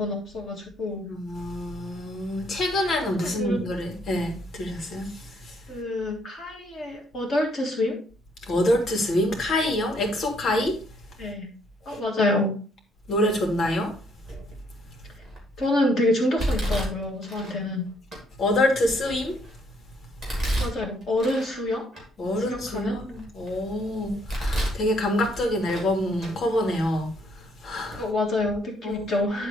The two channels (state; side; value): normal; both; correlation 0.69